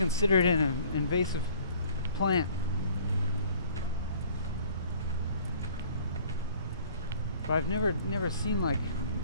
an invasive plant, but I've never seen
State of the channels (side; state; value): both; inverted; correlation -0.53